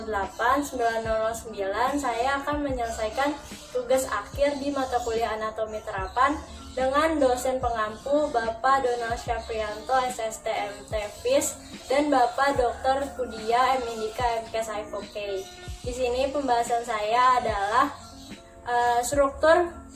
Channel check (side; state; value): both; identical; correlation 1.00